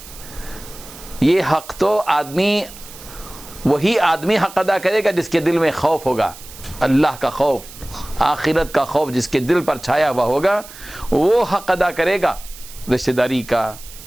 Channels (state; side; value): noise; right; hiss, 17 dB below the sound